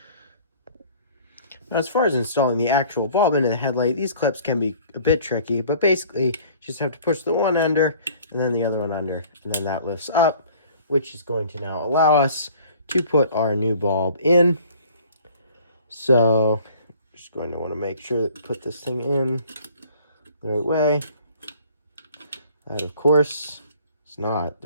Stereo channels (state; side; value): inverted; both; correlation -0.52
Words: Now, as far as installing the actual bulb into the headlight, these clips can be a bit tricky, but basically, you just have to push the one under and then the other one under, and then that lifts up, which is going to now allow us to put our new bulb in. So, just going to want to make sure that put this thing in the right way. That, of course, is not